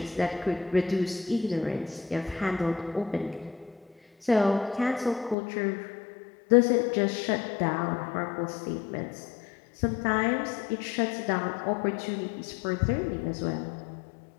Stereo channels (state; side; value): drops out; right; at 5.4 s